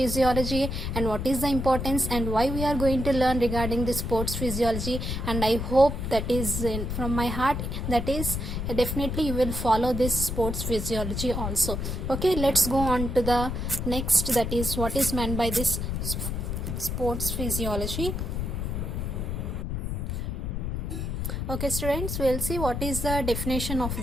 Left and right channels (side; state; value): left; noise; rumble, 3 dB below the sound